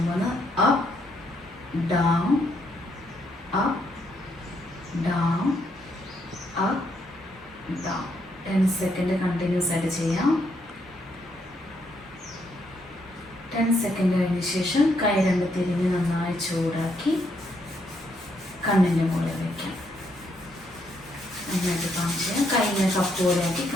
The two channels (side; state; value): both; normal; correlation 0.75